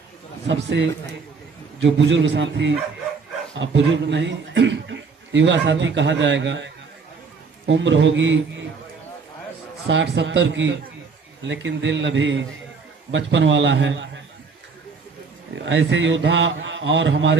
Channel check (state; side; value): quieter; left; 5.0 dB